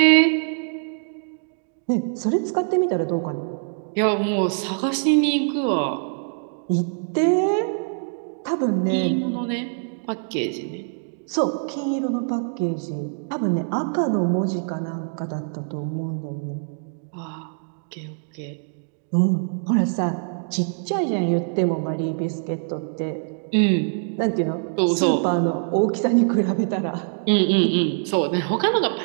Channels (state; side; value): silent; left; digital silence